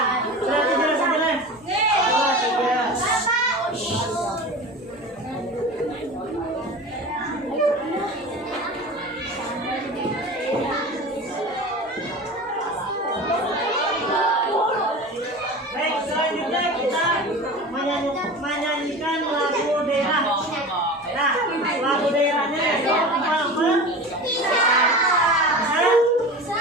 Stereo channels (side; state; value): both; normal; correlation 0.33